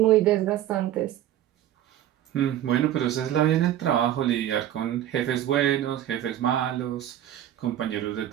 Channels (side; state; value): left; quieter; 12.0 dB